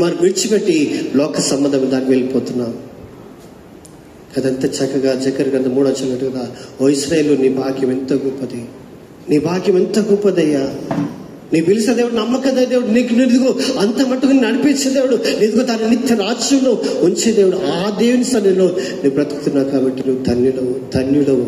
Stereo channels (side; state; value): both; identical; correlation 1.00